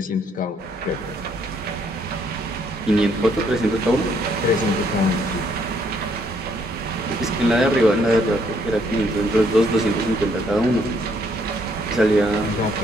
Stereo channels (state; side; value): normal; both; correlation 0.69